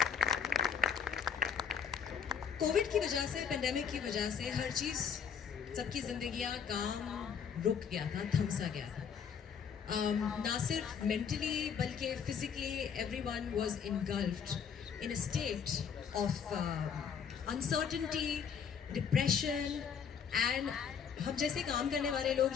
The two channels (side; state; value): right; quieter; 7.2 dB